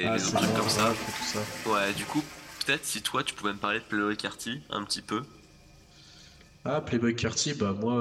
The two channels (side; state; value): both; identical; correlation 1.00